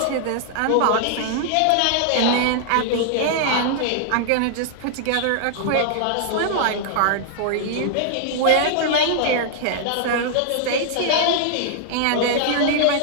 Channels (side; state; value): both; different; correlation -0.01